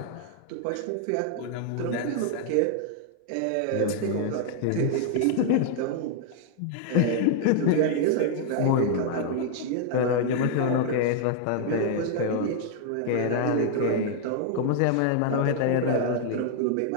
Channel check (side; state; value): both; different; correlation -0.01